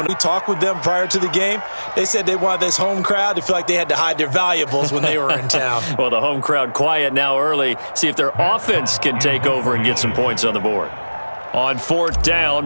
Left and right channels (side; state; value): both; inverted; correlation -1.00